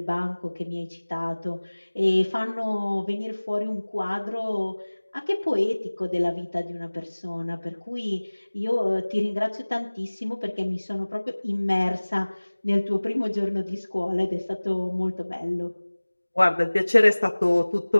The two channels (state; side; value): inverted; both; correlation -1.00